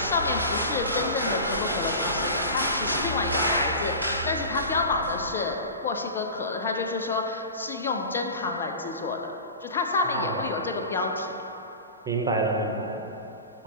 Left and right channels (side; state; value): both; inverted; correlation -0.33